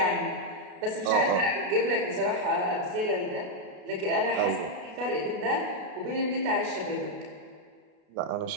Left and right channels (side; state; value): left; late; 33 ms